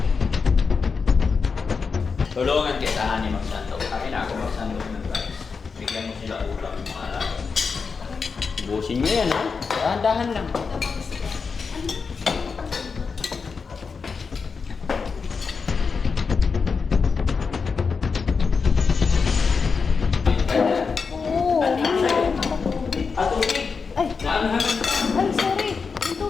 Tulungan kita ni magsandok. Akin ako magsandok ng rice. Bigyan mo sila ulam ng mga alaga. Ubusin nyo yan, ha? Dahan-dahan lang. Oo. At tubig! Ay. Naanghangan ka! Ay, sorry. Yung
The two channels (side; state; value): right; quieter; 5.2 dB